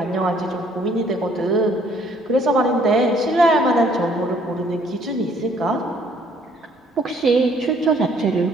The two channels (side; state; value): both; normal; correlation 0.62